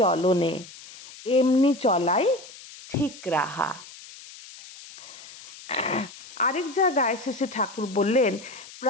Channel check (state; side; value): noise; left; hiss, 17 dB below the sound